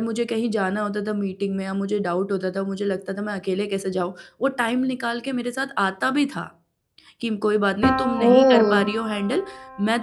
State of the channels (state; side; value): identical; both; correlation 1.00